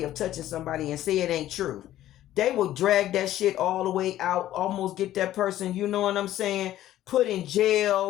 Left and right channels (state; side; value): quieter; right; 13.4 dB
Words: of touching somebody and say it ain't true, they will drag that shit all the way out, almost get that person, you know what I'm saying, put in